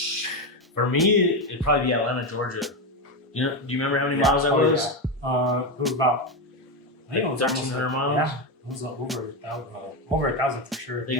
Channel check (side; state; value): both; normal; correlation 0.11